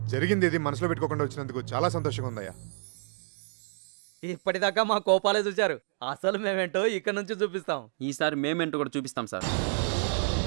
జరిగింది ఇది మనసులో పెట్టుకోకుండా వచ్చినందుకు చాలా సంతోషంగా ఉందయ్యా. ఇప్పటిదాకా మా కోపాలే చూశారు, అసలు మేమేంటో ఇక్కడ నుంచి చూపిస్తాం. ఈసారి మేమేంటో కూడా చూపిస్తాం సార్.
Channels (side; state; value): left; silent; digital silence